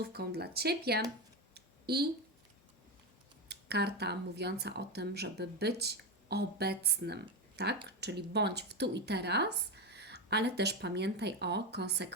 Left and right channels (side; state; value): both; normal; correlation 0.14